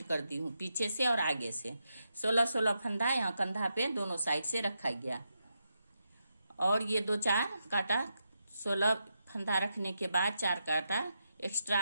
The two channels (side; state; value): both; inverted; correlation -0.84